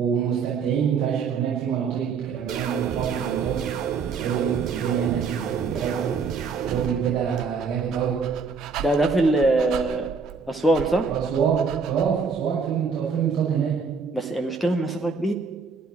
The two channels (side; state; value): left; quieter; 5.2 dB